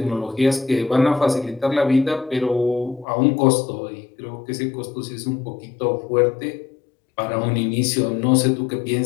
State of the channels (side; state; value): right; drops out; at 3.1 s